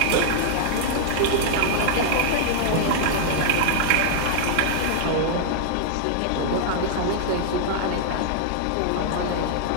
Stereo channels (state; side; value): different; both; correlation -0.01